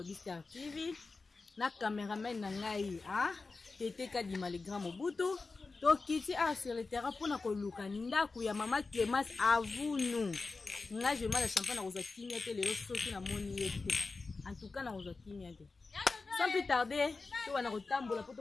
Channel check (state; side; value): quieter; right; 3.9 dB